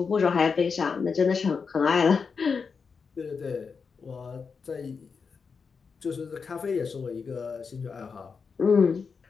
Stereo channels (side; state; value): right; quieter; 5.4 dB